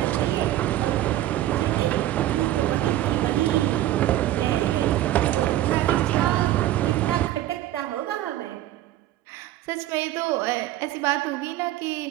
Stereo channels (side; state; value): left; quieter; 13.9 dB